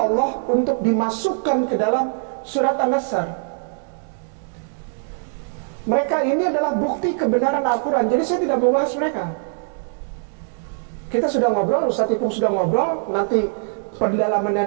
untuk dimasukkan ke dalam surat An-Nasr. Mereka ini adalah bukti kebenaran Al-Quran. Jadi saya tidak membahas mereka. Kita sudah ngobrol, Ustadz Ipung sudah ngobrol, nanti pendalamannya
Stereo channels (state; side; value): silent; left; digital silence